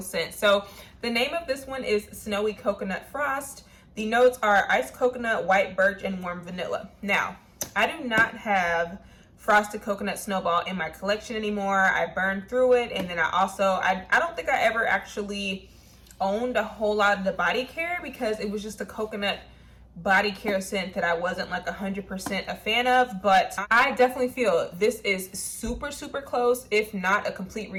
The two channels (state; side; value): identical; both; correlation 1.00